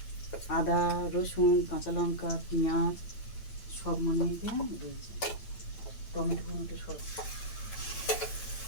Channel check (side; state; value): right; late; 9.0 ms